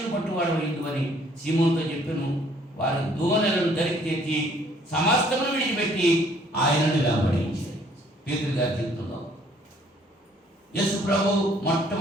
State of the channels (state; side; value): normal; both; correlation 0.61